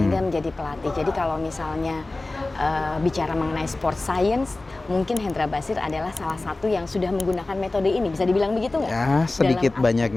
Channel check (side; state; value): right; quieter; 3.1 dB